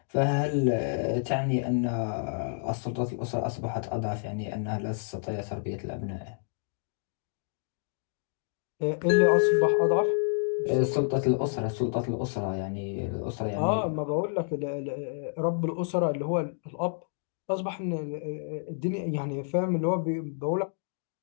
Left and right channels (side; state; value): right; silent; digital silence